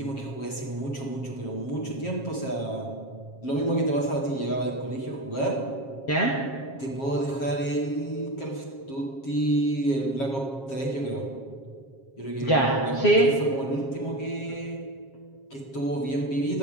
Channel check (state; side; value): late; right; 7.4 ms